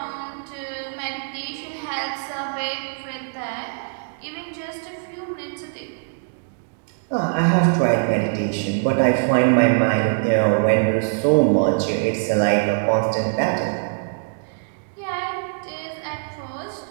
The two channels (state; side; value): silent; left; digital silence